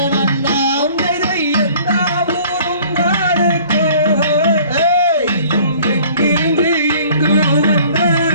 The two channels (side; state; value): both; inverted; correlation -0.52